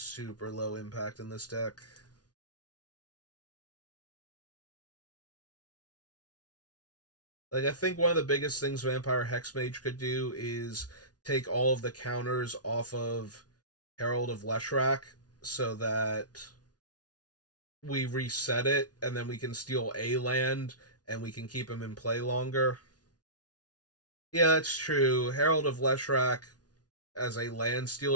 low impact in this deck. Like, I think one of the biggest things Vampire Hexmage could do is take all of the counters off of Herald of Leshrac so that we reset it and then we can steal a land and we can keep him in play longer. Yeah, that's true. Herald of Leshrac as a land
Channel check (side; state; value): right; late; 0.69 ms